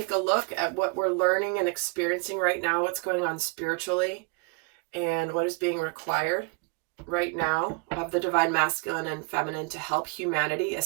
a look at what we're learning and experiencing right now, what's going on spiritually, and what is being required right now of the divine masculine and feminine to help humanity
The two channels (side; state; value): left; quieter; 32.0 dB